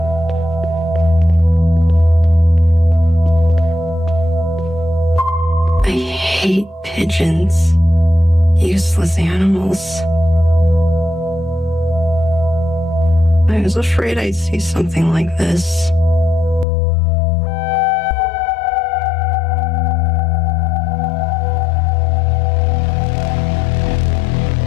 I hate pigeons. Useless animals. I was afraid I'd see something like this.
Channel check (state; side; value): drops out; right; at 16.7 s